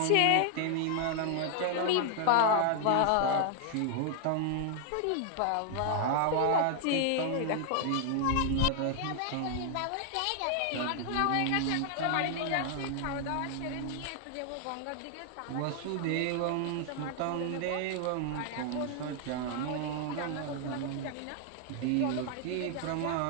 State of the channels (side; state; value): both; different; correlation 0.00